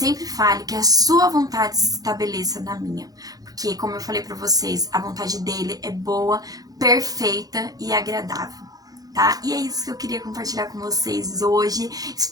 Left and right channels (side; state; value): left; late; 0.18 ms